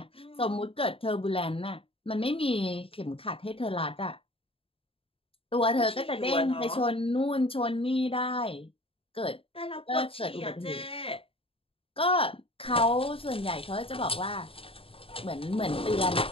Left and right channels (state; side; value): late; right; 0.27 ms